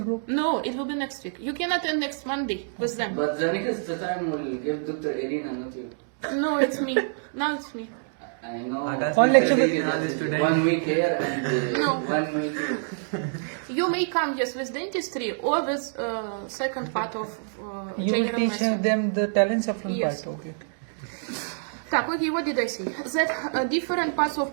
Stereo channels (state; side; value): silent; left; digital silence